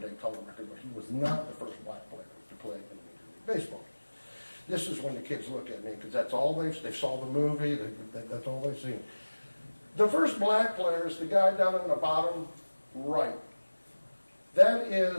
color record, but he was not the first black player to play in Major League Baseball. This is when the kids look at me, because that's all they saw the movie, that's all they've seen. The first black player is the guy down in the bottom right. That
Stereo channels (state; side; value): inverted; both; correlation -1.00